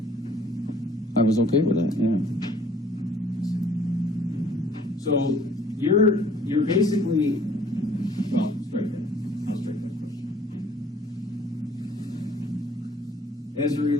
I was okay with that, yeah. So you're basically, well, strike that. I'll strike that question. As it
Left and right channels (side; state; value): both; normal; correlation 0.57